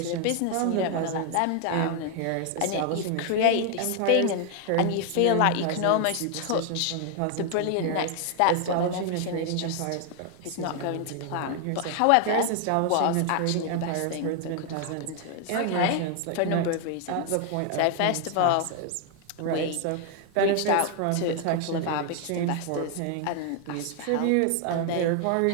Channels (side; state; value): both; different; correlation 0.00